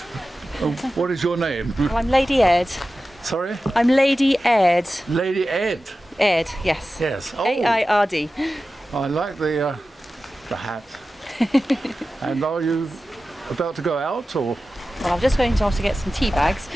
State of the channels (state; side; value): normal; both; correlation 0.94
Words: What is your name? Well, I'm Lady Ed. Sorry? I'm Lady Ed. Lady Ed. Ed, yes. Yes. Oh, A-I-R-D. I like the hat. And are you about to go out or? Well, I'm just going to also get some tea bags.